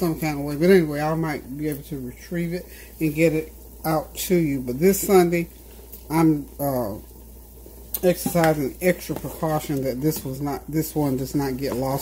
kind of way. But anyway, I might be able to retrieve it and get it out to you. But this Sunday, I'm exercising extra precaution that this one does not get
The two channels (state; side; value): identical; both; correlation 1.00